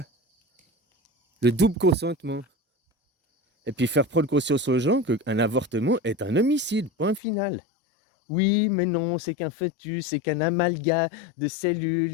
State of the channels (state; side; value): drops out; right; at 7.2 s